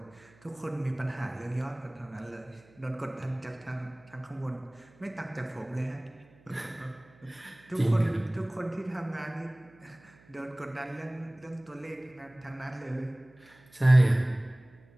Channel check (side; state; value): right; noise; hum, 27 dB below the sound